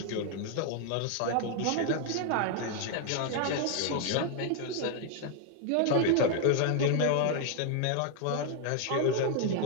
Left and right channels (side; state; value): both; different; correlation 0.00